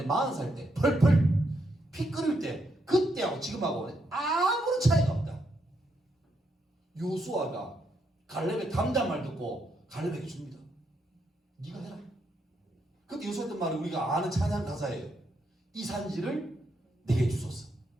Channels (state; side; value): normal; both; correlation 0.79